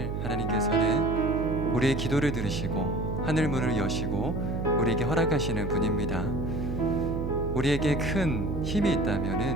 하나님께서는 우리의 기도를 들으시고 하늘 문을 여시고 우리에게 허락하시는 분입니다. 우리에게 큰 힘이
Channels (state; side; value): noise; right; hum, 3 dB below the sound